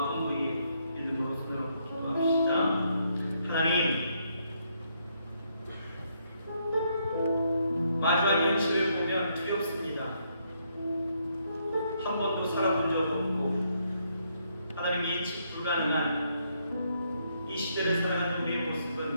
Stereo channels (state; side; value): inverted; both; correlation -0.74